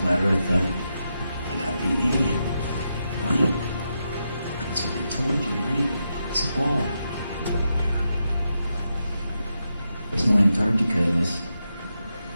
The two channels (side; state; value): both; inverted; correlation -0.85